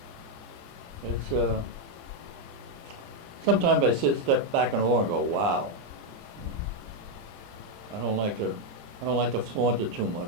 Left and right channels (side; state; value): left; late; 29 ms